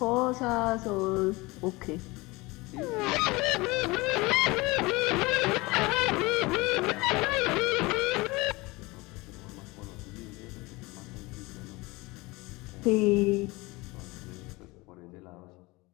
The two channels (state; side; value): quieter; right; 23.0 dB